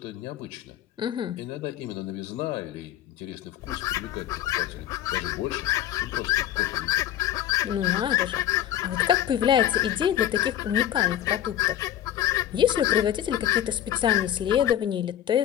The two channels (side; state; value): right; quieter; 11.5 dB